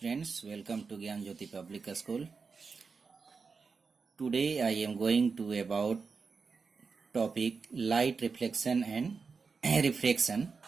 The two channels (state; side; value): quieter; left; 4.9 dB